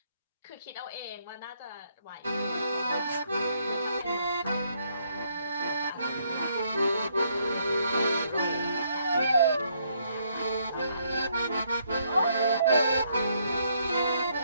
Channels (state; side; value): inverted; both; correlation -0.72